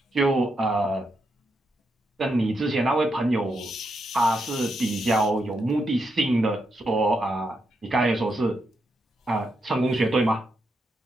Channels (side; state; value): both; normal; correlation 0.82